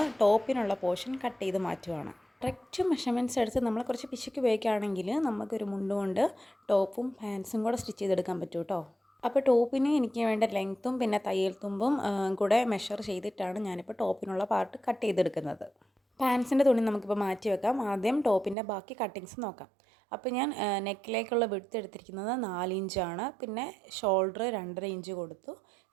ടോപ്പിനുള്ള പോർഷൻ കട്ട് ചെയ്ത് മാറ്റുകയാണ്. കറക്റ്റ് മെഷർമെൻറ്റ്സ് എടുത്ത് നമ്മൾ കുറച്ച് പിശുക്ക് ഉപയോഗിക്കുകയാണെങ്കിൽ നമുക്കൊരു മുണ്ട് കൊണ്ട് ടോപ്പും പാൻസും കൂടെ സ്റ്റിച്ച് ചെയ്തെടുക്കാൻ പറ്റും കേട്ടോ. അപ്പോൾ ടോപ്പിന് എനിക്ക് വേണ്ട ലെങ്ത്തും പിന്നെ തയ്യൽ തുമ്പും കൂടെ മെഷർ ചെയ്തിട്ടാണ് ഞാനിപ്പോൾ ടോപ്പിനുള്ള പാർട്ട് കട്ട് ചെയ്തെടുക്കുന്നത്. പാൻസിൻ്റെ തുണി നമുക്കിപ്പോൾ മാറ്റി വെക്കാം. ആദ്യം ടോപ്പിൻ്റെ ബാക്കി കട്ടിങ്സ് നോക്കാം. അപ്പോൾ ഞാൻ നെക്കിലേക്കുള്ള വിഡ്ത്ത് എടുത്തിരിക്കുന്നത് 4 ഇഞ്ചാണ്. പിന്നെ ഷോൾഡർ 2.5 ഇഞ്ച് കൊടുത്തു.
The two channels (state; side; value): drops out; left; at 18.6 s